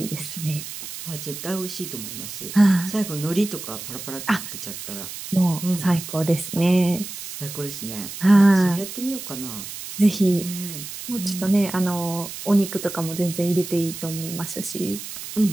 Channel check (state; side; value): noise; right; hiss, 10 dB below the sound